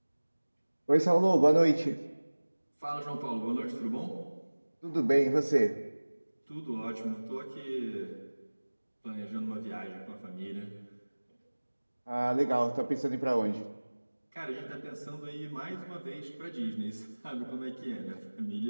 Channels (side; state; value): both; inverted; correlation -1.00